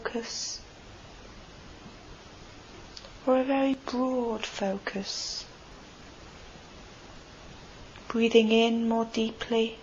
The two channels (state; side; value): identical; both; correlation 1.00